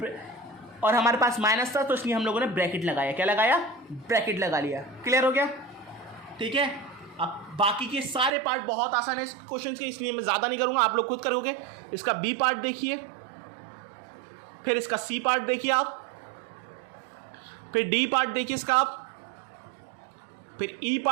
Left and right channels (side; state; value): left; drops out; at 8.3 s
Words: और हमारे पास माइनस था तो इसलिए हम लोगों ने ब्रैकेट लगाया। क्या लगाया? ब्रैकेट लगा लिया। क्लियर हो गया? ठीक है। अब बाकी के सारे पार्ट बहुत आसान है इस क्वेश्चन के, इसलिए मैं ज़्यादा नहीं करूँगा, आप लोग खुद करोगे। इसका बी पार्ट देखिए, फिर इसका सी पार्ट देखिए आप, फिर डी पार्ट देखिए इसका आप, फिर ई